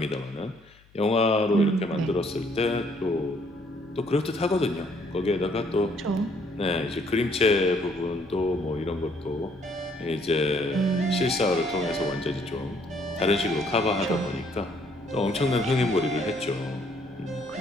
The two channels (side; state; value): left; noise; hum, 29 dB below the sound